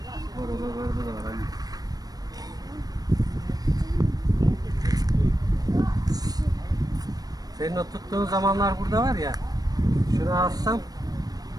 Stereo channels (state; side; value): late; left; 0.19 ms